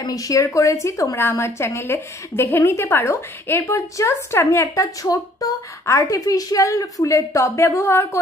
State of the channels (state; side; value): normal; both; correlation 0.59